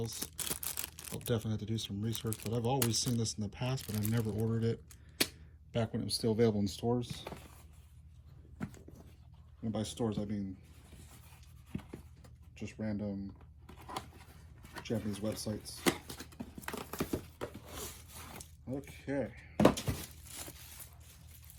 I'll definitely have to do some research, but I've always seen this in the past, but I never ordered it back when it was still available in stores. And by stores, I mean just random Japanese websites. Okay.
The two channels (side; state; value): both; identical; correlation 1.00